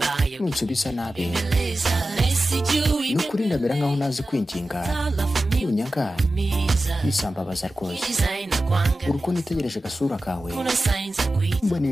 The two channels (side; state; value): both; normal; correlation 0.94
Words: nunsubiza nabi nukuri ndamera nkaho nazi kwinginga nunyaga bisambabaza rwose uruko nitegereje gasura kawe mbona